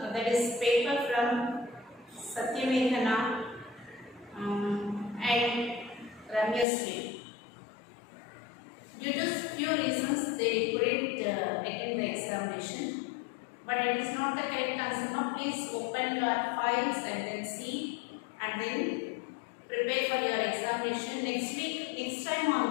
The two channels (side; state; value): right; drops out; at 6.7 s